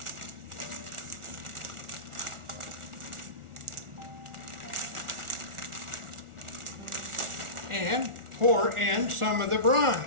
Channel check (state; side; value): late; left; 1.4 ms